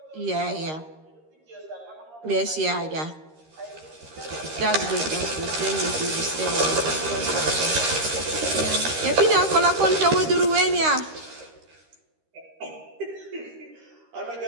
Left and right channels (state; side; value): late; left; 13 ms